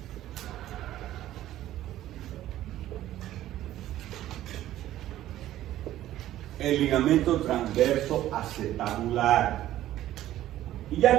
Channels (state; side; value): quieter; left; 13.6 dB